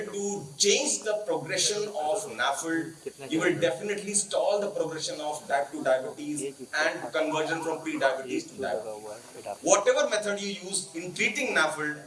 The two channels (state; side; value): identical; both; correlation 1.00